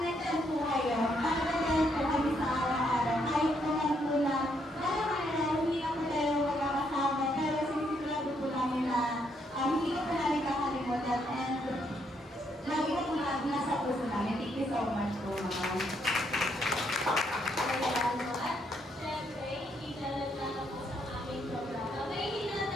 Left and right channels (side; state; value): both; normal; correlation 0.74